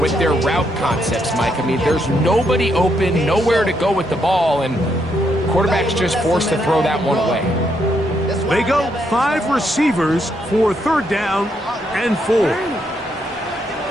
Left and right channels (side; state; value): both; normal; correlation 0.77